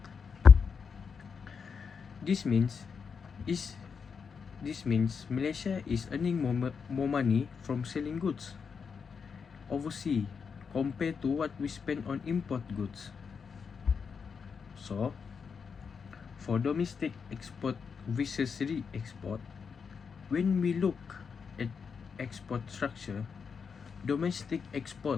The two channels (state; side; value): quieter; right; 6.0 dB